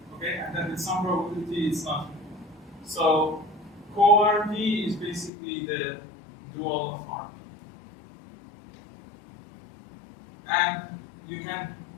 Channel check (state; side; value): drops out; right; at 5.3 s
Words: Okay, and then with some probability, it's not. So co-RP is basically the dual of RP. And you can